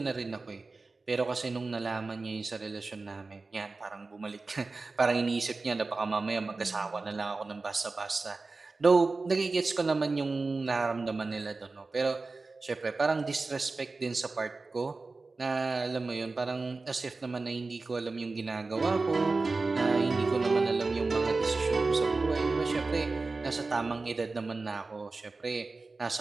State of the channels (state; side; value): quieter; left; 3.7 dB